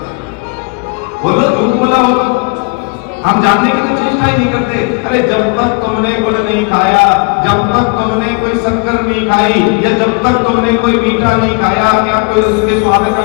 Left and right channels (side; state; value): right; quieter; 32.9 dB